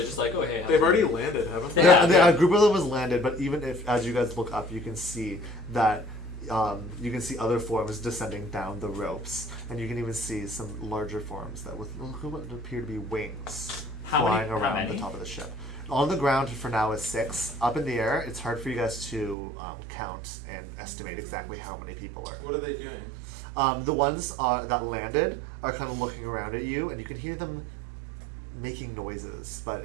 just like, oh hey? They've already landed, haven't they? Yeah. A group of them was landed, but even if, as you guys look up, you can see that you can see other forms descending down the ropes, and you can even see some larger forms that with what appear to be wings flying around the top of the ship. On the ground for now is 6. Up in the air, it's hard for you guys to count and estimate exactly how many people are. What are they doing? The ones that landed are kind of looking around at you, and you can hear them making noises, but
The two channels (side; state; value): left; drops out; at 19.4 s